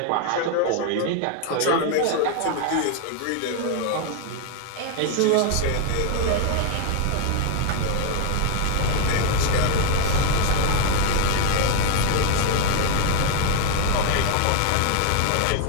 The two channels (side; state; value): both; different; correlation 0.00